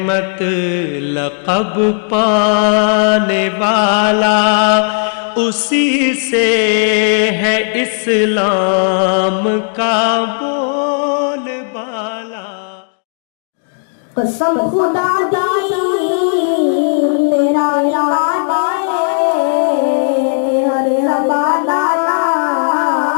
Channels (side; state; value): right; silent; 71 dB below the other